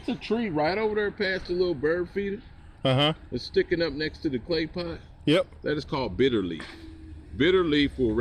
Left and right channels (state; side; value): identical; both; correlation 1.00